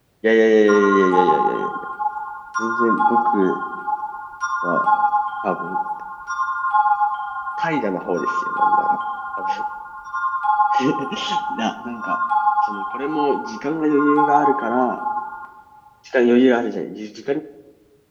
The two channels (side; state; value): both; identical; correlation 1.00